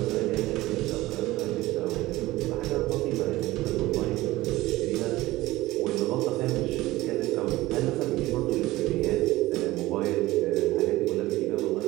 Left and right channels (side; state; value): left; quieter; 18.0 dB